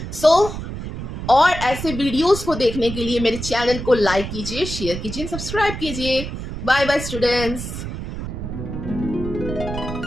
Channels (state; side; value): noise; right; rumble, 7 dB below the sound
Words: सो और ऐसे वीडियोस को देखने के लिए मेरे चैनल को लाइक कीजिए, शेयर कीजिए, सब्सक्राइब कीजिए। Bye bye students.